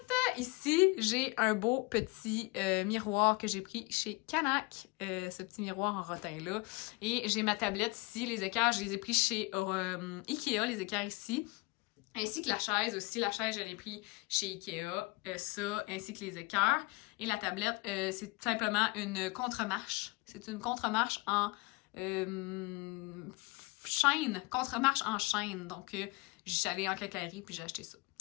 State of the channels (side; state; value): right; quieter; 25.9 dB